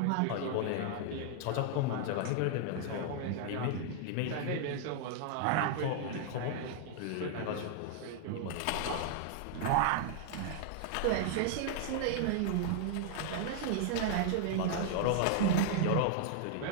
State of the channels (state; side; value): different; both; correlation 0.00